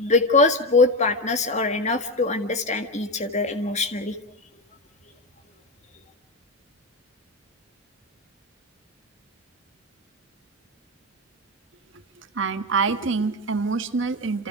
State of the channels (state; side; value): normal; both; correlation 0.15